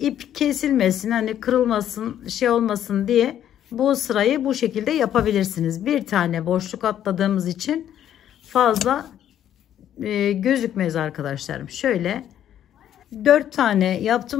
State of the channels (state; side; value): quieter; right; 10.7 dB